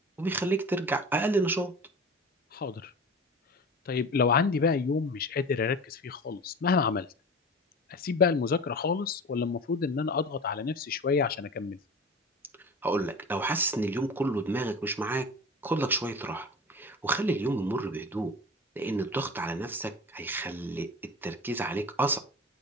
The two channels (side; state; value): both; normal; correlation 0.34